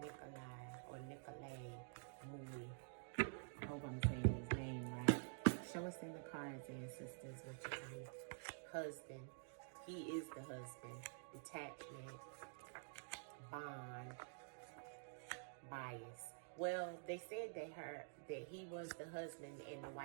or Nicolay Moui? cards, ancestors. What you tell me? Husband. He is the husband. Detachment. Bond. Bias. Well, they said that he was the husband and the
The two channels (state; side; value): silent; left; digital silence